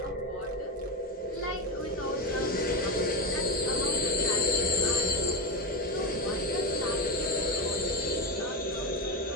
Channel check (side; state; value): both; normal; correlation 0.15